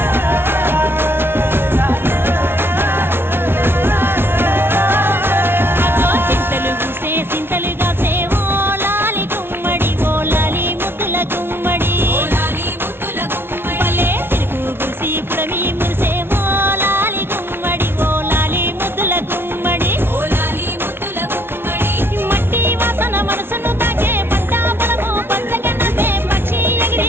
సింతలుగా సేవో లాలి గుమ్మడి ఓ లాలి ముద్దుల గుమ్మడి పల్లె తిరుగు గుసి పుడమి మురిసేవో లాలి గుమ్మడి ఓ లాలి ముద్దుల గుమ్మడి మట్టి వాసన మనసును తాకే పంట పొలము పంచగన్నదే పక్షి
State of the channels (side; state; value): left; late; 0.11 ms